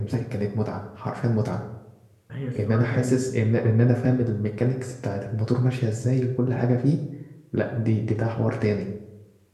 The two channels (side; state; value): both; identical; correlation 1.00